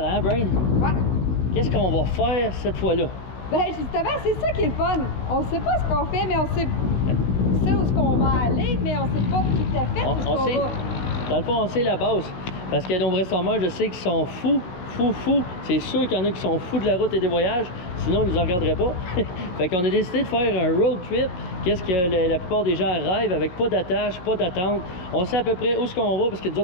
hein, Brain? Ouais. Qu'est-ce qu'on va faire cette fois-là? Ben, justement, c'est ça qui est le fun. On sait pas ce qu'on fait, mais on sait où est-ce qu'on va aller, mais on sait pas tout à fait où est-ce qu'on va. Dans le fond, on sait la base. Parce qu'il y a de nombreux summers, je sais qu'ils sont fous. C'est sûr qu'il y en a qui sont fous de la route et des voyages, sinon ils nous en regarderaient pas. Fait qu'on a décidé de faire un road trip. Qu'est-ce que la plupart des gens rêvent, avec pas d'attache, pas d'attente. On sait à peu près où est-ce qu'on va, parce que nous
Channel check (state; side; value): late; right; 16 ms